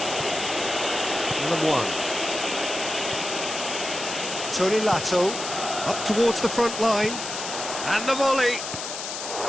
Number one. Tony Lato up towards the front line. And the volley.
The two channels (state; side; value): noise; left; hiss, 6 dB below the sound